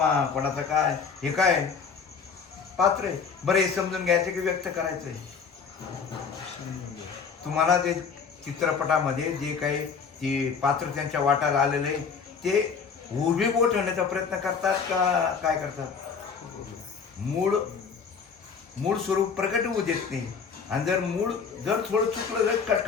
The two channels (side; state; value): right; quieter; 5.9 dB